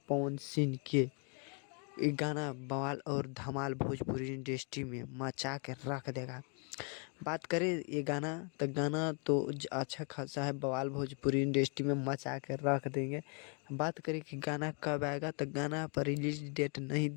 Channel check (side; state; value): right; quieter; 38.4 dB